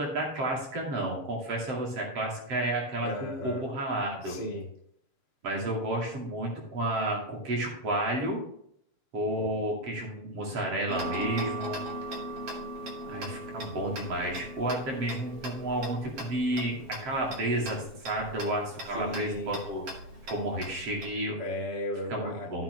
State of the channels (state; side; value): late; left; 7.4 ms